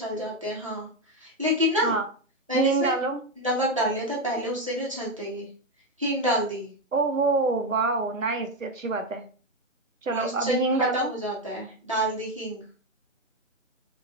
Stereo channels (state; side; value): normal; both; correlation 0.09